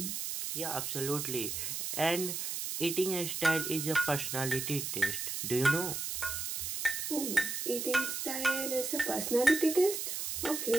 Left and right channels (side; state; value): right; noise; hiss, 3 dB below the sound